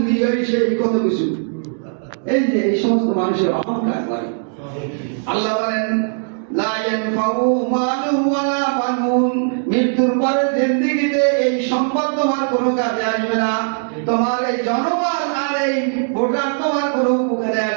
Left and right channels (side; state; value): left; silent; digital silence